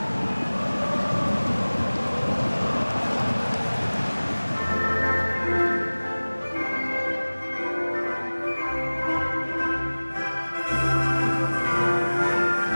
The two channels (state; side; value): inverted; both; correlation -1.00